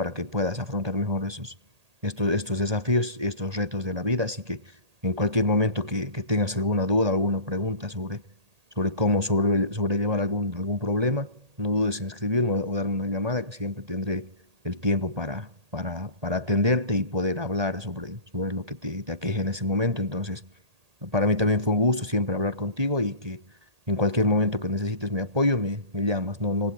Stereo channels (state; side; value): late; left; 1.8 ms